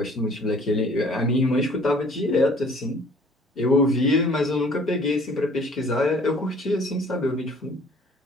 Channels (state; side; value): normal; both; correlation 0.54